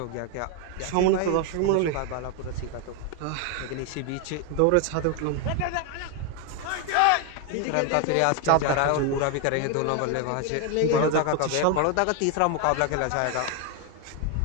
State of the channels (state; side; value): different; both; correlation 0.01